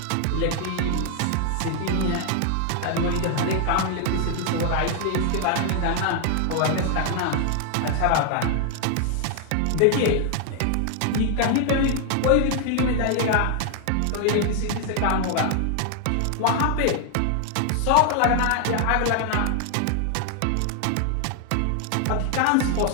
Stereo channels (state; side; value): different; both; correlation 0.00